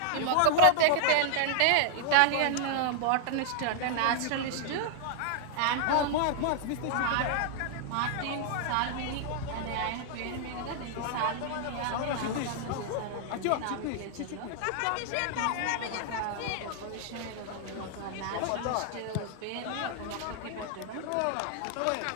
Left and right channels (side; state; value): both; different; correlation -0.01